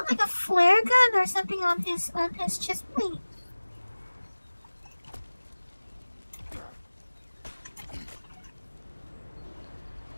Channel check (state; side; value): inverted; both; correlation -1.00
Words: like a flare gun or something on his chest plate.